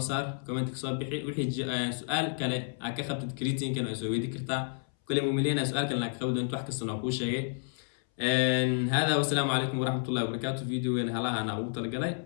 saar comment ka soo bixi wixii su'aal kale aad ka qabtid creatine-kan oo soo weydii kartaa kulay muumileyna su'aal kale ka qabdo wax kasta oo ku sheegay هذا والسلام عليكم ورحمة الله وبركاته فيديو هلا أنا أقول تلقى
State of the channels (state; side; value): silent; right; 57 dB below the other